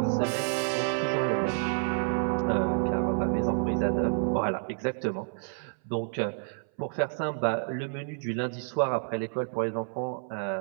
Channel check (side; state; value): left; silent; 58 dB below the other